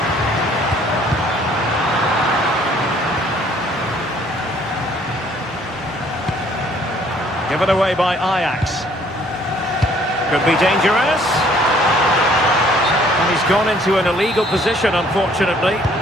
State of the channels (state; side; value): normal; both; correlation 0.60